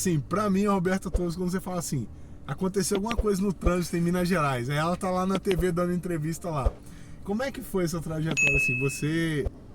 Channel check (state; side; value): identical; both; correlation 1.00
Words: para mim, a Roberta Torres, quando você fala assim, aconteceu alguma coisa no trânsito em Minas Gerais, aí ela tá lá na TV dando entrevista lá. Como é que foi essa trajetória assim? Você